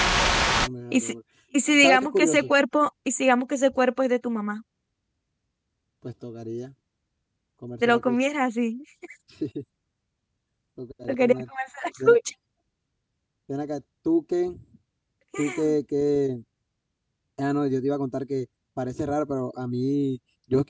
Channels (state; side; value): identical; both; correlation 1.00